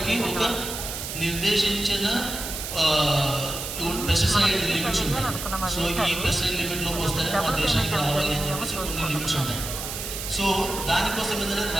ఒక నిర్దేశించిన పెస్టిసైడ్ లిమిట్స్ ఉంటాయి. సో ఈ పెస్టిసైడ్ లిమిట్లోకి వస్తేనే మా దేశానికి రావాలి అని చెప్పేసి కొన్ని లిమిట్స్ ఉంటాయి. సో దానికోసం ఏంటంటే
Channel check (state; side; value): noise; right; hiss, 6 dB below the sound